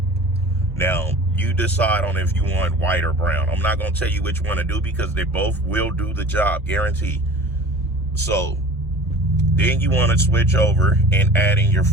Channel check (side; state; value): both; normal; correlation 0.42